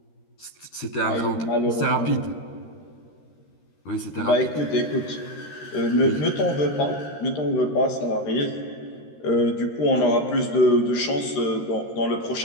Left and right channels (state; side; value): late; right; 13 ms